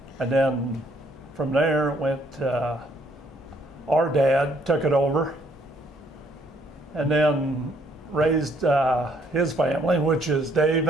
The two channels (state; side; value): normal; both; correlation 0.67